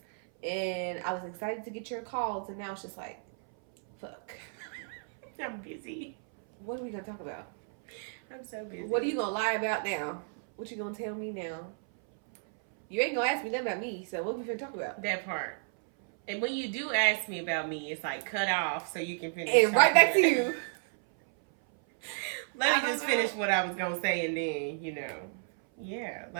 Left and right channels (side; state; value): left; silent; 56 dB below the other